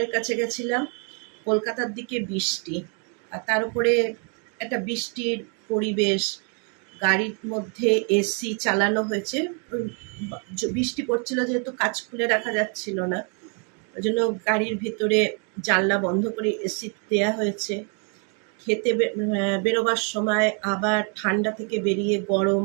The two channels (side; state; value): left; quieter; 38.3 dB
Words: কাছে গেছিলাম। কলকাতার দিকে বৃষ্টি, আর তার উপরে একটা বৃষ্টির পরিবেশ, গাড়ির মধ্যে এসি চালানো হয়েছে। বৃষ্টি পড়ছিল যেহেতু কাজ খুলে রাখা যাচ্ছিল না, ওই জন্য গাড়ির ভিতরে জানলা বন্ধ করে এসি দেওয়া হয়েছে। খেতে বেরোবার সময় আবার ঠান্ডা থেকে বেরিয়ে গরম,